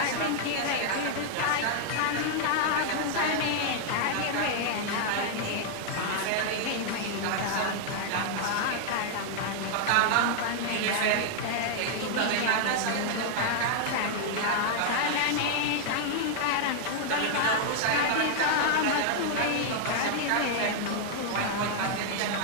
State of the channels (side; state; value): both; different; correlation 0.00